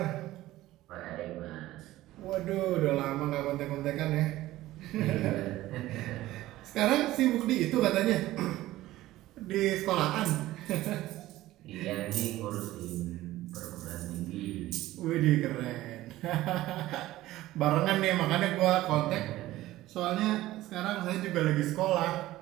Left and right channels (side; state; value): left; quieter; 16.1 dB